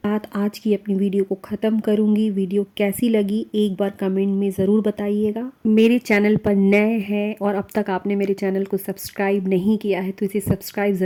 आज की अपनी वीडियो को ख़त्म करूँगी। वीडियो कैसी लगी एक बार कमेंट में ज़रूर बताइएगा। मेरे चैनल पर नए हैं और अब तक आपने मेरे चैनल को सब्सक्राइब नहीं किया है तो इसे सब्सक्राइब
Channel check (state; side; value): identical; both; correlation 1.00